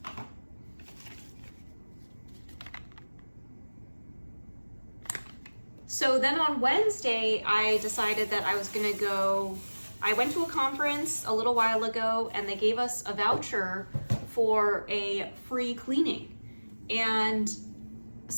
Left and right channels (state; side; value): inverted; both; correlation -1.00